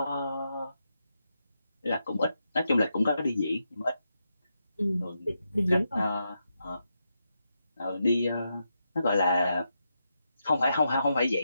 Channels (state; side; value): inverted; both; correlation -0.85